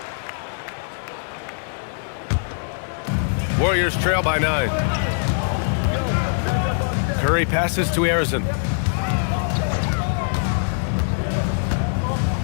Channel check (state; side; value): silent; right; digital silence